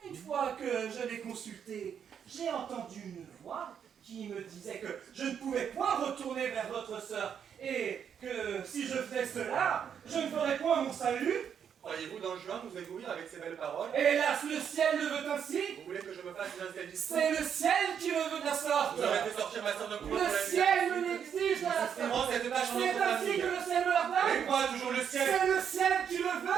une fois que je l'ai consulté, j'ai entendu une voix qui me disait que je ne pouvais point retourner vers votre sœur et que si je faisais cela, je ne ferais point mon salut. Croyez-vous, Don Juan, nous éblouir avec ces belles paroles? Hélas, le ciel le veut ainsi. Vous voulez que je me fasse une interdistion? C'est le ciel qui le veut de la sorte. Vous avez fait sortir ma sœur de couvent. Le ciel me l'exige de la sorte. C'est ainsi que le ciel me l'ordonne. Et quoi, toujours le ciel? C'est le ciel qui le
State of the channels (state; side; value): quieter; left; 8.0 dB